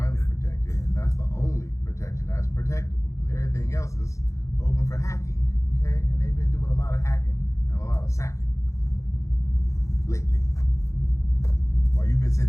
protected, and that's the only protection that's protectable, because everything else is open for hacking, okay? And they've been doing a lot of hacking and a lot of sacking lately. While you've been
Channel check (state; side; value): late; right; 0.15 ms